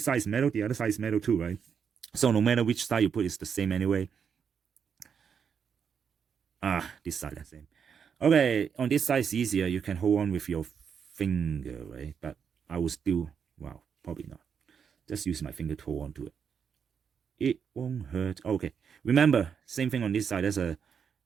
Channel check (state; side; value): quieter; left; 7.0 dB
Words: side is metal, the other side is metal too, right? So no matter which side you put, it's the same anyway. This side the same. Okay, on this side it's easier. You can hold on with your finger, right? But I will still, wow, probably not. Just use my finger to hold on to it. It won't hurt. Okay, remember, same thing on this side.